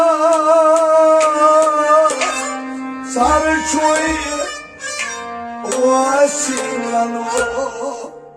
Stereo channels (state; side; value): identical; both; correlation 1.00